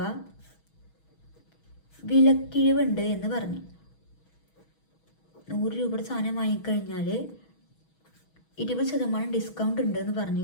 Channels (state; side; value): late; right; 6.2 ms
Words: വിലക്കിഴിവുണ്ട് എന്ന് പറഞ്ഞു. 100 രൂപയുടെ സാധനം വാങ്ങിക്കഴിഞ്ഞാൽ 20% ഡിസ്കൗണ്ട് ഉണ്ട് എന്ന് പറഞ്ഞു